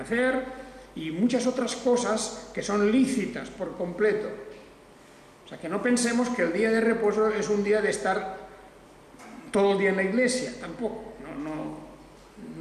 y muchas otras cosas que son lícitas por completo. O sea, que no pensemos que el día de reposo es un día de estar todo el día en la iglesia, tampoco,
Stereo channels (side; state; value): both; identical; correlation 1.00